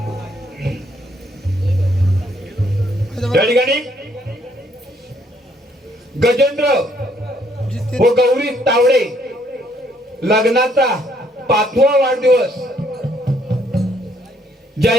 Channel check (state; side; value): normal; both; correlation 0.68